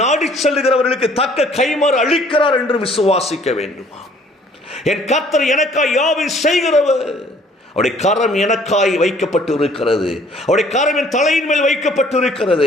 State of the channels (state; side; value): normal; both; correlation 0.58